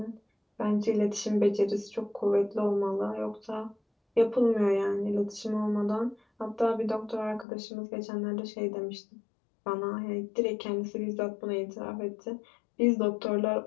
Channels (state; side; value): drops out; right; at 7.5 s